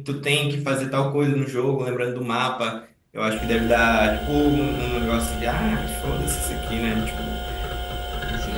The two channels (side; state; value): both; identical; correlation 1.00